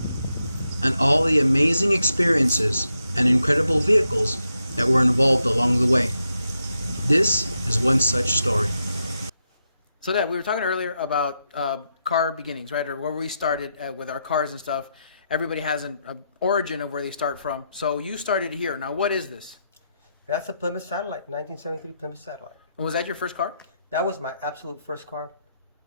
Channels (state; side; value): inverted; both; correlation -0.83